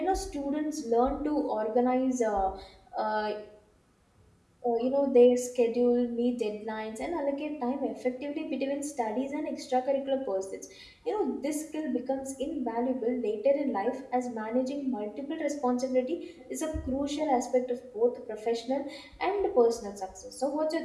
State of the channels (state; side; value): identical; both; correlation 1.00